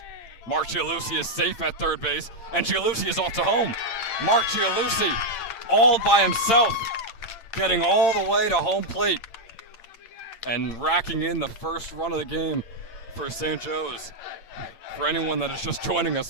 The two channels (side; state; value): right; late; 8.8 ms